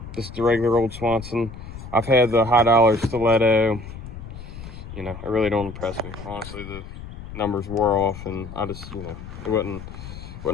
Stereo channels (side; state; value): left; noise; rumble, 12 dB below the sound